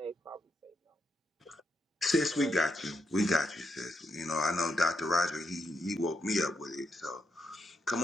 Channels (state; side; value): normal; both; correlation 0.80